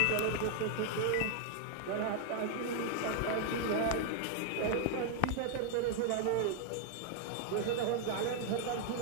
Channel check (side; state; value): both; different; correlation 0.00